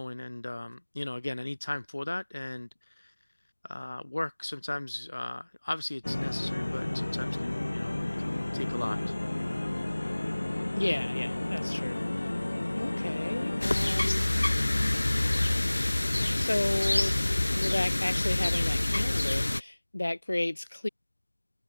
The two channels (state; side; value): inverted; both; correlation -1.00